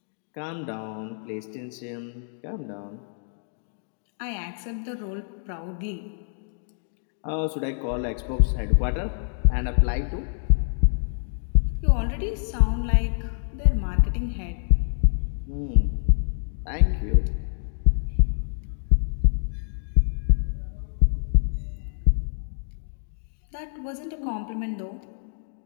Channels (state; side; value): silent; right; digital silence